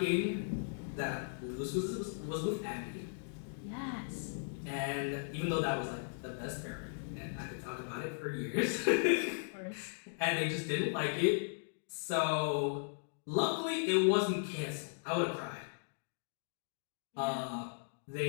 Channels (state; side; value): silent; right; digital silence